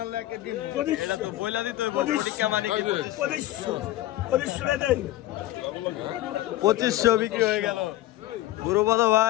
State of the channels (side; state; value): right; quieter; 15.3 dB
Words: পঁচিশশো বিক্রি হয়ে গেল। গুরুপদ